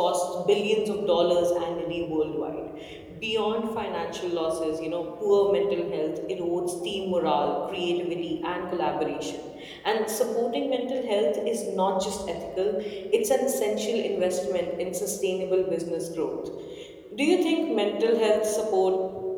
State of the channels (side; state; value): both; identical; correlation 1.00